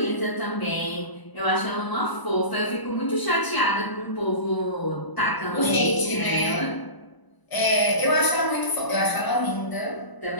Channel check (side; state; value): right; late; 1.0 ms